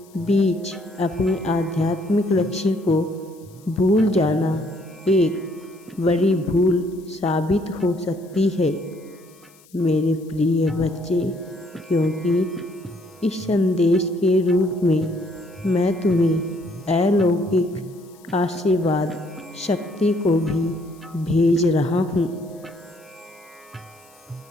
बीच अपने आध्यात्मिक लक्ष्य को भूल जाना एक बड़ी भूल साबित हो सकती है। मेरे प्रिय बच्चे, क्योंकि इस संदेश के रूप में मैं तुम्हें अलौकिक आशीर्वाद शक्ति को भी भेज रहा हूँ,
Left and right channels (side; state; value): left; noise; hiss, 28 dB below the sound